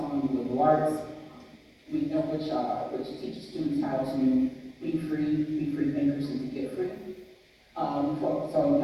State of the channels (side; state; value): both; identical; correlation 1.00